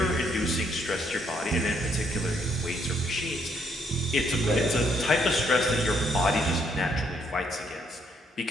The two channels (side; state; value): both; normal; correlation 0.71